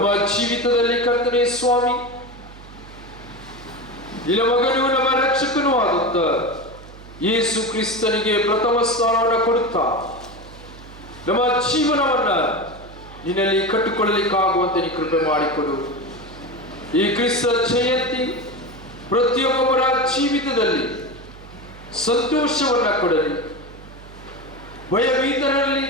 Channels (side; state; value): right; noise; hum, 18 dB below the sound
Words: ಜೀವಿತದಲ್ಲಿ ಕರ್ತನೆ ಸ್ವಾಮಿ, ನಿನ್ನ ಮಗನು ನಮ್ಮ ರಕ್ಷಕನೂ ಆದಂತ ಯೇಸು ಕ್ರಿಸ್ತನಿಗೆ ಪ್ರಥಮ ಸ್ಥಾನವನ್ನು ಕೊಡುತ್ತಾ ನಮ್ಮ ಜೀವನವನ್ನ ನಿನ್ನಲ್ಲಿ ಕಟ್ಟಿಕೊಳ್ಳಲಿಕ್ಕಾಗುವಂತೆ ನೀ ಕೃಪೆ ಮಾಡಿಕೊಡು. ಈ ಕ್ರಿಸ್ತ ಜಯಂತಿ ಪ್ರತಿಯೊಬ್ಬರ ಜೀವಿತದಲ್ಲಿ ಸಂತೋಷವನ್ನ ಕೊಡಲಿ, ಭಯಭೀತರಲ್ಲಿ